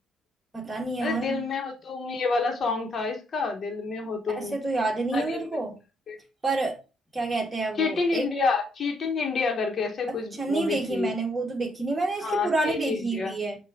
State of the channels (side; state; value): both; normal; correlation 0.72